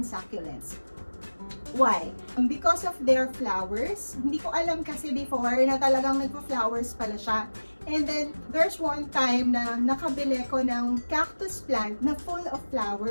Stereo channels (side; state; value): both; inverted; correlation -1.00